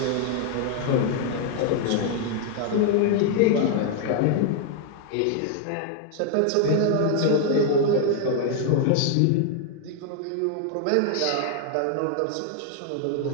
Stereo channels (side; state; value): both; different; correlation 0.00